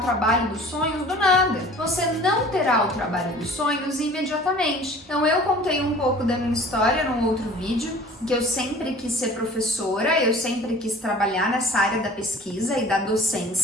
trabalho dos sonhos do nada. Você não terá o trabalho dos sonhos imediatamente. Então eu contei um pouco da minha história num outro vídeo, que eu sempre quis ser professora, eu sempre quis trabalhar nessa área da pesquisa e da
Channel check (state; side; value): normal; both; correlation 0.46